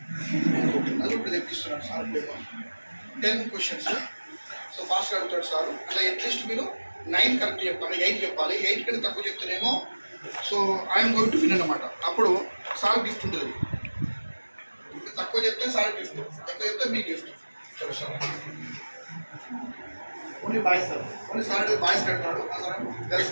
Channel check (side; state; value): both; inverted; correlation -1.00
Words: అది ఇప్పుడు తెప్పిస్తున్నాను సార్. 10 questions. సో ఫాస్ట్గా అడుగుతాడు సార్. అట్లా అట్లీస్ట్ మీరు 9 కరెక్ట్ చెప్పాలి, 8 చెప్పాలి. 8 కంటే తక్కువ చెప్తేనేమో so I'm going to win అన్నమాట. అప్పుడు సార్ గిఫ్ట్ ఉంటుంది. తక్కువ చెప్తే సార్ గిఫ్ట్, ఎక్కువ చెప్తే మీ గిఫ్ట్. సరే sir. Only boys sir, only sir boys కడతాడు, సార్ గర్ల్స్